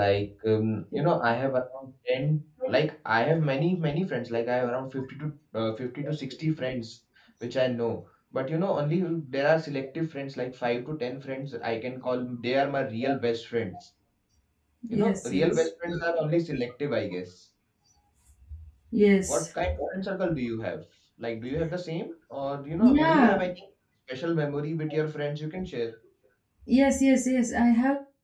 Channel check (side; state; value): both; identical; correlation 1.00